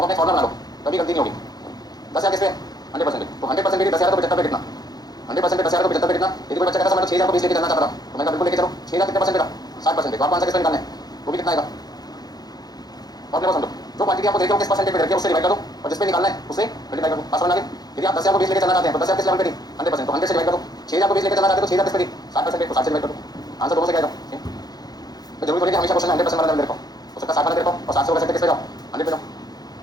अपने फॉर्मुला बना लो, कभी गलती नहीं होगी। 10,000 किस पे? 100% पे। तो 100% पे 10,000 को 75 पे कितना? 100% पे 10,000 को 75 पे कितना? यदि कोई बच्चा कहता है 6,000 को 20 लेके चलना चाहता था, तो मैं बिल्कुल लेके चलो। 6,000 कितने परसेंट पे था? 60% पे। तो आपको आंसर किस पे निकालना है? वो भी कितना आएगा? और समझो, जो क्वांटिटी आपको देखो किस परसेंट पे रखिए उससे डिवाइड करो, और जिस पे निकालना है उससे मल्टीप्लाई करो। पास बनागे। यदि आप 10,000 को 20 लेके चलना चाहते हैं तो 10,000 किस लेवल पे थी? 100%। तो 100 से डिवाइड करो। 6,000 को 20 लेके चलना चाहते हैं तो 6,000 किस पे थी? 60% पे। तो 60 से डिवाइड करो, आंसर दोनों से क्या आएगा? तो जरूरी थोड़ी कि हमेशा क्वेश्चन 100% वाला देखो, हो सकता है 60 वाला देखो, और 60 से हो सकता है किस पे जाओ? 100 पे जाओ।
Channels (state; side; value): late; right; 0.19 ms